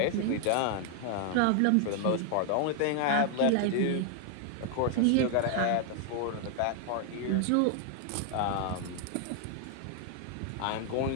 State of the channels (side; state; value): both; different; correlation 0.00